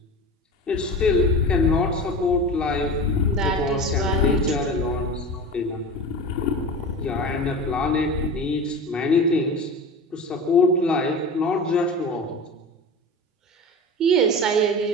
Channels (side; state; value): both; normal; correlation 0.31